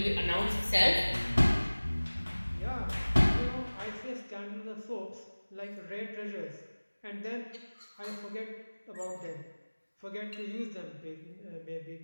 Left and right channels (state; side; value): inverted; both; correlation -1.00